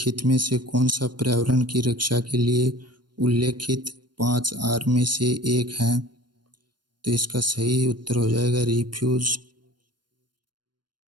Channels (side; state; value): left; late; 0.71 ms